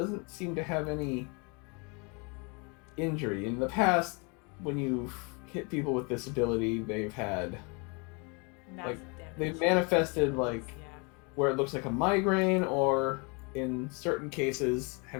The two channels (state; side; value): quieter; right; 32.3 dB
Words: seem to have any injury. In the past, when you've hit people with this ability, they've had Massive damage. they've manifested like Yeah. where it looks like a migraine, or in certain cases